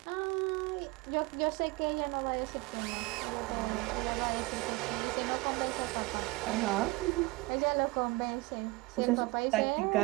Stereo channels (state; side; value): quieter; left; 23.2 dB